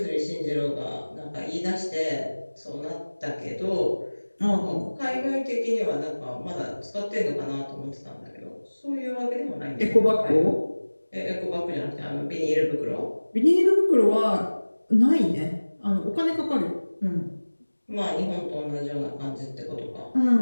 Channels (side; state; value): both; inverted; correlation -1.00